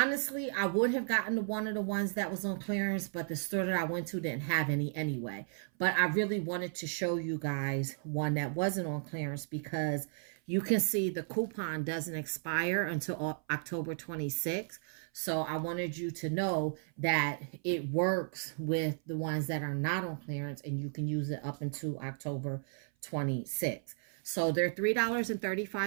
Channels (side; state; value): left; silent; 55 dB below the other